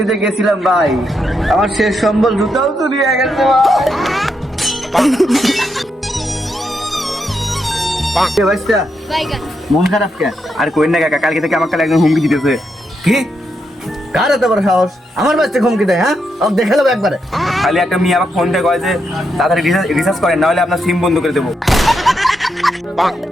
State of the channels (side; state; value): both; normal; correlation 0.82